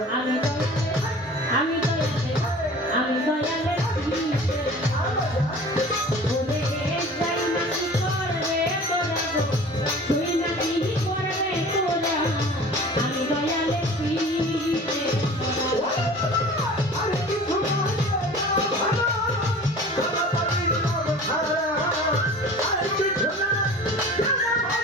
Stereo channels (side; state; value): both; normal; correlation 0.42